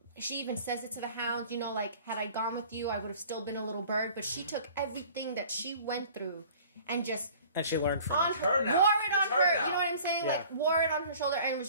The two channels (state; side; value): inverted; both; correlation -0.48